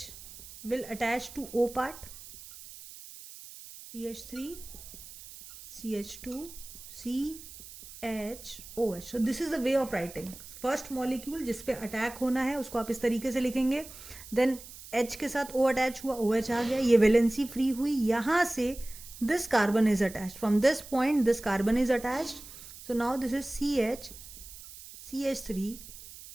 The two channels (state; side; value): noise; right; hiss, 16 dB below the sound